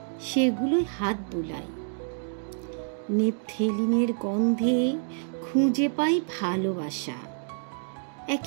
সেগুলোই হাত বোলায়। নেপথেলিনের গন্ধে খুঁজে পাই ভালোবাসা। এক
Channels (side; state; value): left; silent; digital silence